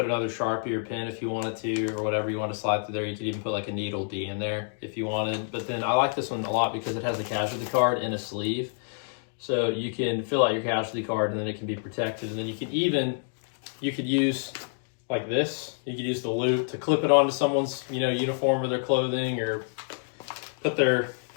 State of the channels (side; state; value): right; silent; digital silence